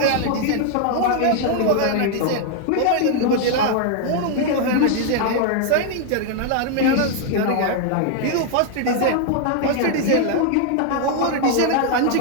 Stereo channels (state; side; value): different; both; correlation 0.00